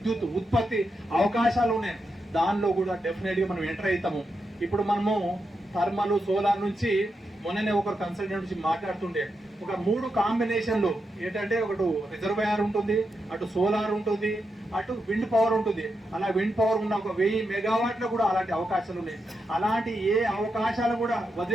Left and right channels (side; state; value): both; normal; correlation 0.85